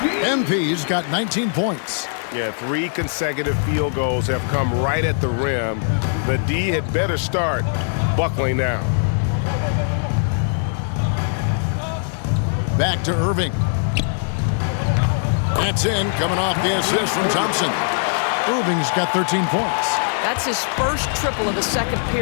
MP's got 19 points. Yeah, 3 consecutive field goals have come right at the rim. The D had better start buckling down. Back to Irving. That's in, coming off the assist from Thompson. Irving's got 13 points. That's his first triple of the second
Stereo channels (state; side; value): silent; right; 62 dB below the other